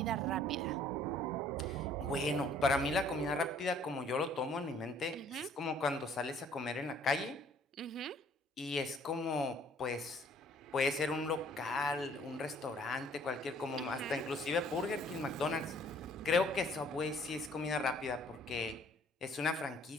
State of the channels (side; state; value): both; normal; correlation 0.58